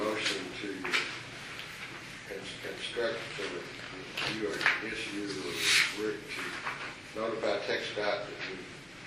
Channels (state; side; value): noise; left; hum, 27 dB below the sound